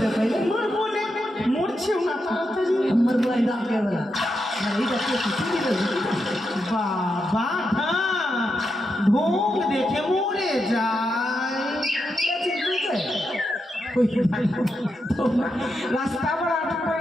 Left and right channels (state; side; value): normal; both; correlation 0.85